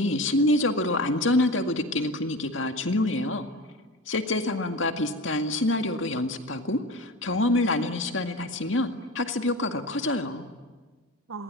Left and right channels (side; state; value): both; normal; correlation 0.31